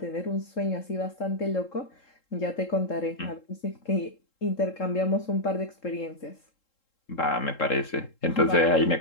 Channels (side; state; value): right; late; 3.7 ms